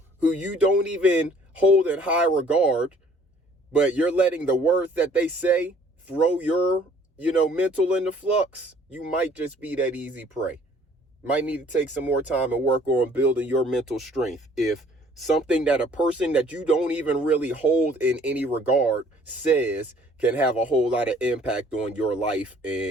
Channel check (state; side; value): normal; both; correlation 0.57